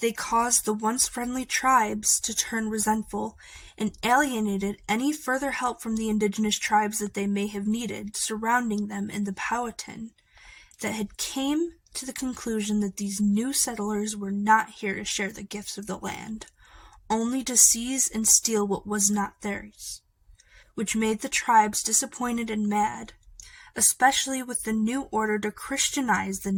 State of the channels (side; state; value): both; identical; correlation 1.00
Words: they caused the once friendly tribes to turn resentful and alienated any further help from the indigenous tribes that they may have needed surrounding them in the Powhatan, that had came to the conclusion that these new settlers were not here to share the gifts of the land, only to seize and steal what was not theirs, which made the tribes disappointed and mad, especially with the new order to Christianize the